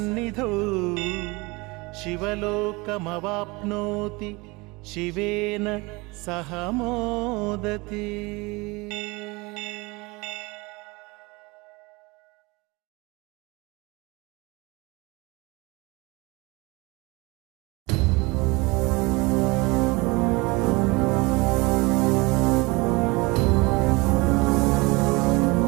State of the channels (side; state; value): left; quieter; 25.1 dB